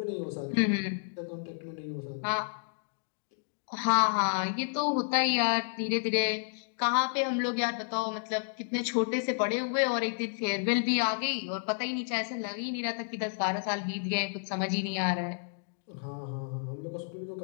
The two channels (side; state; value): right; silent; digital silence